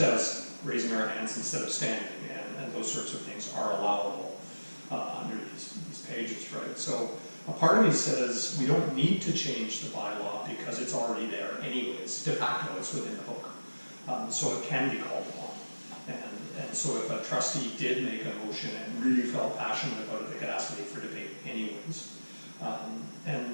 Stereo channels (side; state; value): both; inverted; correlation -1.00